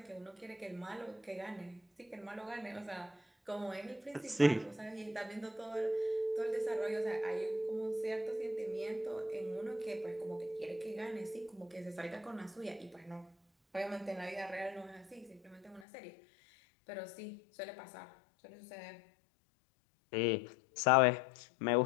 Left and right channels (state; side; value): drops out; right; at 15.9 s